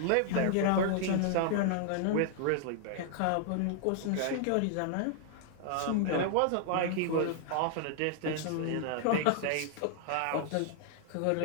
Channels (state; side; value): different; both; correlation -0.01